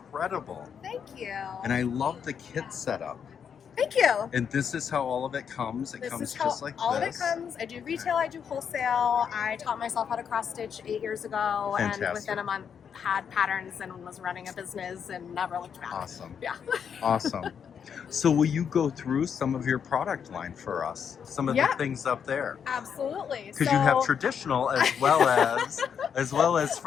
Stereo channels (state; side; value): quieter; right; 7.4 dB